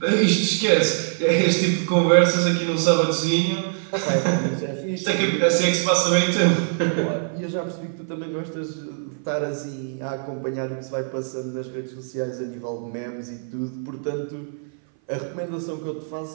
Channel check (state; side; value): silent; left; 57 dB below the other